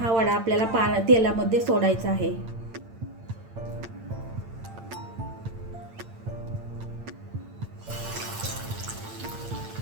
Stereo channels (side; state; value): left; late; 8.8 ms